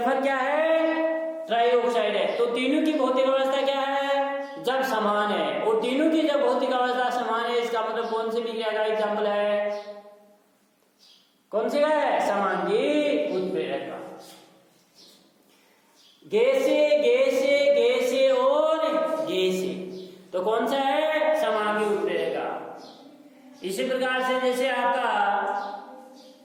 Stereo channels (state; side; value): identical; both; correlation 1.00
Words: क्या है? ट्राइऑक्साइड है। तो तीनों की भौतिक अवस्था क्या है? जब समान है। और तीनों की जब भौतिक अवस्था समान है, इसका मतलब कौन सी विक्रिया का एग्जाम्पल है? कौन सी का है? समांगी उत्प्रेरक का। गैसे गैसे गैसे और गैसे, तो कौन सा है? समांगी उत्प्रेरक का। इसी प्रकार से जैसे आपका